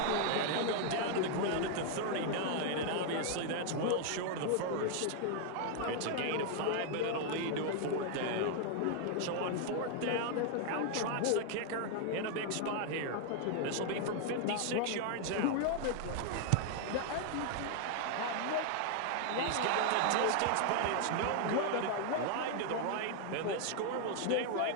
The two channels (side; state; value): both; different; correlation 0.00